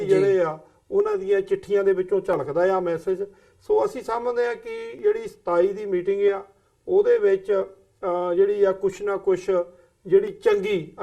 ਆ ਉਹਨਾਂ ਦੀਆਂ ਚਿੱਠੀਆਂ ਦੇ ਵਿੱਚੋਂ ਝਲਕਦਾ ਆ ਮੈਸੇਜ। ਸੋ ਅਸੀਂ ਸਮਝਦੇ ਆ ਕਿ ਜਿਹੜੀ 27 ਦੀ ਮੀਟਿੰਗ ਆ ਉਹਦੇ ਵਿੱਚ ਜਿਹੜੀ ਆ ਕੁਛ ਨਾ ਕੁਛ ਜਿਹੜੀ ਚੰਗੀ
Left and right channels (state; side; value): identical; both; correlation 1.00